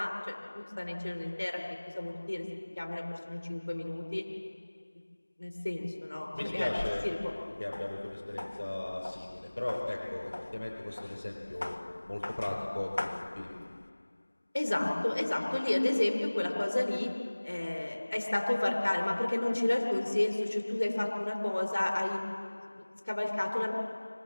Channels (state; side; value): inverted; both; correlation -1.00